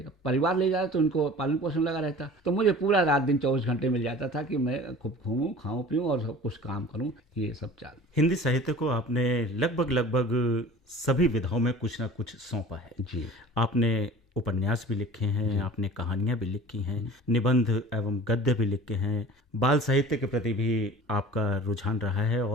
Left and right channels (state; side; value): normal; both; correlation 0.42